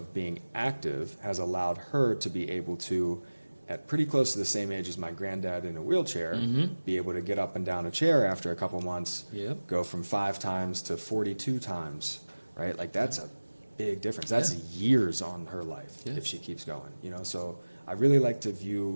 being active has allowed her to be able to, at pretty close to the same age as my granddad in a wheelchair, be able to get up and down a chair after a couple months, Yep. go from 5 times to 42 times, right? Like, that's a big difference. That's Yeah. years on her life Yeah. if she keeps going, you know? So I really like to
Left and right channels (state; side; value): inverted; both; correlation -1.00